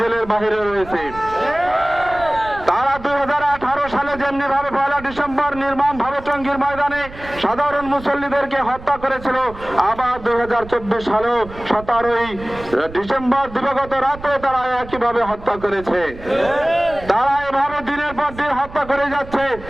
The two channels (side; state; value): right; noise; rumble, 16 dB below the sound